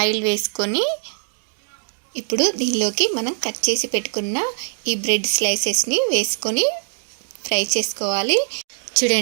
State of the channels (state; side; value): silent; left; digital silence